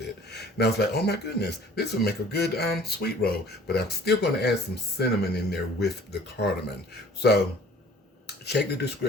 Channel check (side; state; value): both; normal; correlation 0.51